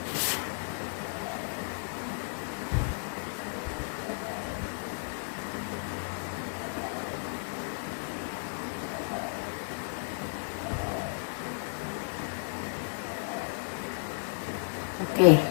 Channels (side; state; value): right; silent; digital silence